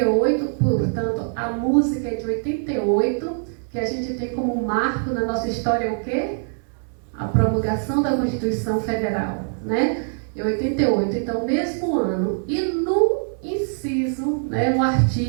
portanto, a música é de 88, que a gente tem como marco na nossa história o quê? A promulgação da Constituição Federal, né? Em 88, então, mesmo ano. E no inciso, né, no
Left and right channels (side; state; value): left; silent; digital silence